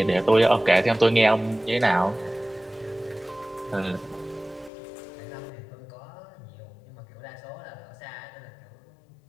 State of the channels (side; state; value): right; drops out; at 4.7 s